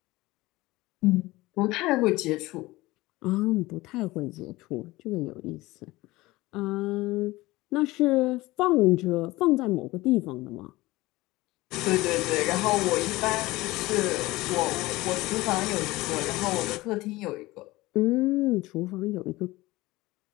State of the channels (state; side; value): quieter; right; 19.7 dB